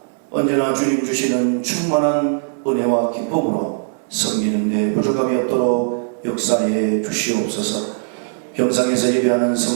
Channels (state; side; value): silent; left; digital silence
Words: 언제나 주님 주시는 충만한 은혜와 기쁨으로 섬기는데 부족함이 없도록 역사해 주시옵소서. 병상에서 예배하는